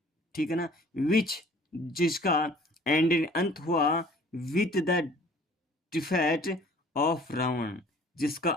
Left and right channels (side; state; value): both; normal; correlation 0.52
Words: ठीक है ना, विच, जिसका एंड अंत हुआ with the defeat of Ravan, जिसका